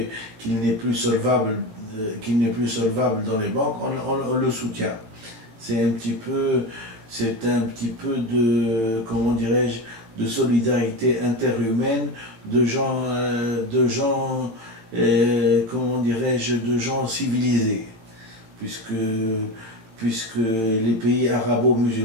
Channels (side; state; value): left; late; 18 ms